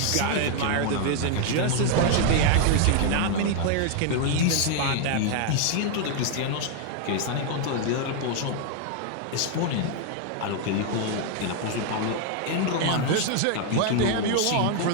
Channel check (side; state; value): both; different; correlation 0.00